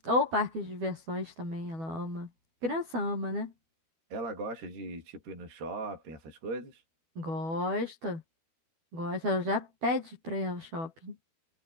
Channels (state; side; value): late; left; 12 ms